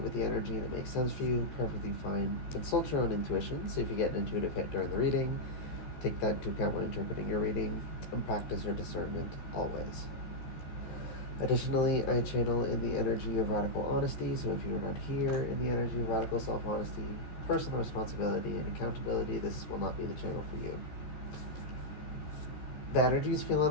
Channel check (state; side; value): late; right; 14 ms